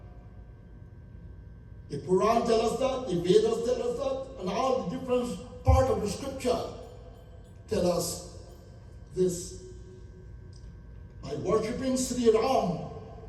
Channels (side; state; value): both; identical; correlation 1.00